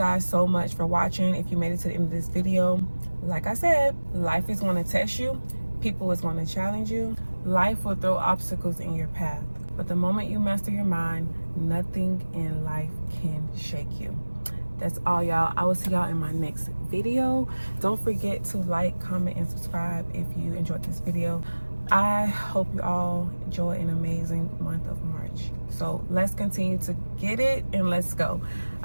so much for watching. If you made it to the end of this video, like I said, life is going to test you. People is going to challenge you. Life will throw obstacles in your path. But the moment you master your mind, nothing in life can shake you. That's all, y'all. I will see y'all in my next video. Don't forget to like, comment, and subscribe if you enjoyed this video. I hope you all enjoy an amazing month of March. So let's continue to get it, and let's go.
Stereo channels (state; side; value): inverted; both; correlation -1.00